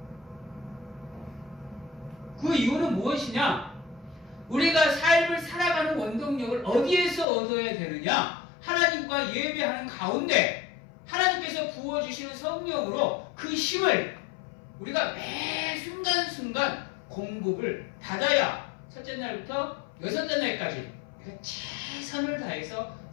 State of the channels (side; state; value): right; drops out; at 7.2 s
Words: 그 이유는 무엇이냐? 우리가 삶을 살아가는 원동력을 어디에서 얻어야 되느냐? 하나님과 예배하는 가운데 하나님께서 부어주시는 성령으로 그 힘을 우리가 매 순간순간 공급을 받아야 첫째 날부터 여섯째 날까지 우리가 최선을 다해서